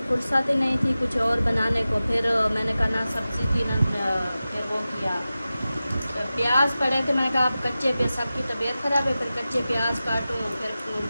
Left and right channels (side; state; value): both; inverted; correlation -0.95